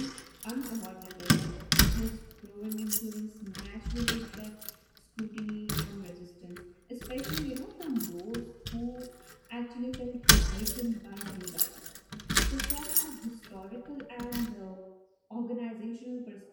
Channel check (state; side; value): identical; both; correlation 1.00